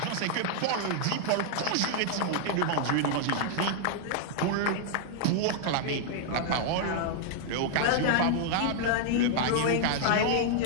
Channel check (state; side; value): different; both; correlation -0.01